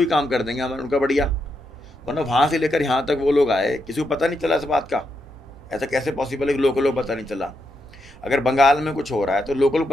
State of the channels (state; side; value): normal; both; correlation 0.82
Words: काम कर देंगे हमारे, उनका बढ़िया। वरना वहाँ से लेकर यहाँ तक वो लोग आए, किसी को पता नहीं चला इस बात का। ऐसा कैसे पॉसिबल है कि लोगों को पता नहीं चला? अगर बंगाल में कुछ हो रहा है तो लोगों को